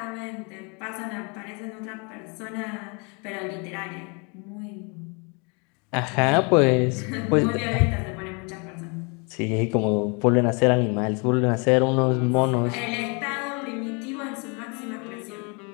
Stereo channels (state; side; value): quieter; right; 33.0 dB